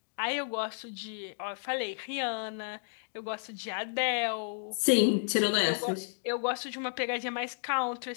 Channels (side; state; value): right; silent; digital silence